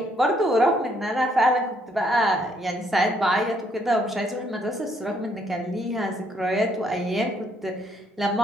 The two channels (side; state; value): both; normal; correlation 0.70